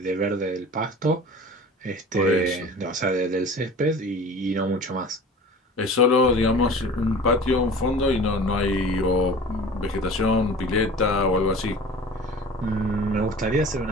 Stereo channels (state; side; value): normal; both; correlation 0.41